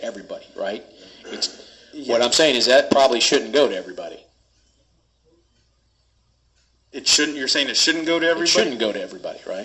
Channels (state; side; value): identical; both; correlation 1.00